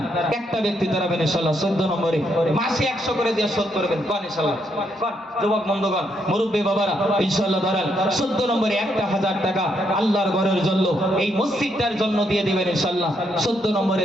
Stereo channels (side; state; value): both; normal; correlation 0.76